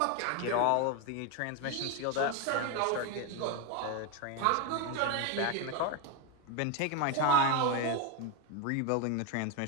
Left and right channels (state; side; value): different; both; correlation 0.02